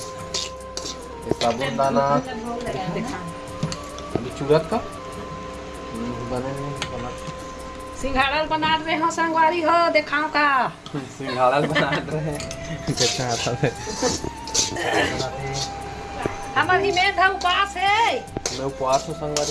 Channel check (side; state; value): both; identical; correlation 1.00